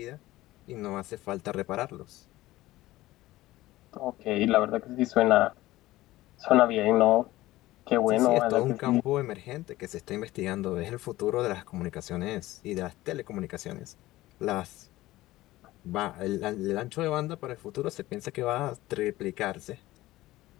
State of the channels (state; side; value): quieter; right; 17.2 dB